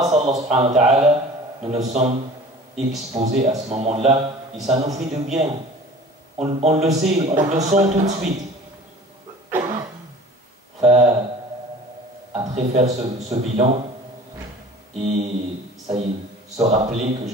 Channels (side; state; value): both; normal; correlation 0.44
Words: à Allah subhanahu wa ta'ala, nous nous sommes exposés à ce moment-là et ça nous fait du bien. On le sait, on le sent tout de suite. Après faire ce bilan et ça y est, se rappeler que